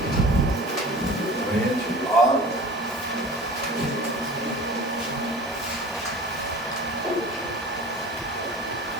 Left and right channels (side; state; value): both; normal; correlation 0.40